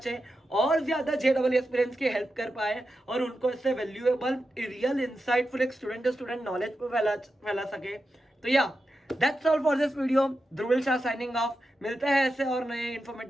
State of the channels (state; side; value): normal; both; correlation 0.89